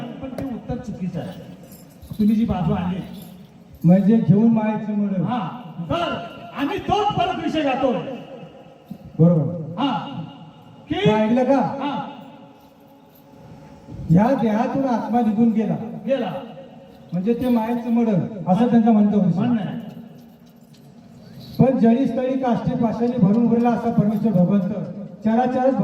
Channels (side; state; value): both; identical; correlation 1.00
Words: पण ते उत्तर चुकीचं आहे. तुम्ही जी बाजू आणली म्हणजे घेऊन मायाचं मड. हा, तर आम्ही तोच परत विषय गातोय. बरोबर. हा, की ऐकलं का? हा, या देहातून आत्मा निघून गेला गेला म्हणजे ते मायाचं मड असं त्यांचं म्हणतो. म्हणणं आहे. पण जळी स्थळी काष्टी पाशाने भरून उरला असा परमेश्वर भगवंत चराचरच